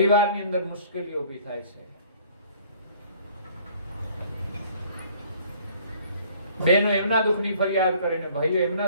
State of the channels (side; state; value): both; inverted; correlation -0.56